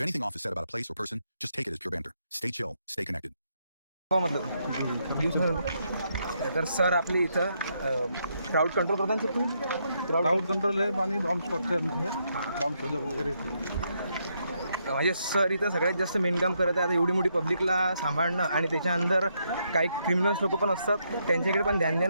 off is said about a place or person, just take it as pure banter. Stay chill, stay connected. तर sir आपली इथं crowd control करतात sir तुम्ही crowd control आहे आणि bomb spot आहे bomb शोधक वगैरे. म्हणजे सर इथं सगळ्यात जास्त मेनकाम करत आहे. आता एवढी मोठी पब्लिकला सांभाळणं आणि त्याच्या अंदर काही क्रिमिनल्स लोक पण असतात त्यांच्याकडे पण ध्यान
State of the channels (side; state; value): both; inverted; correlation -0.78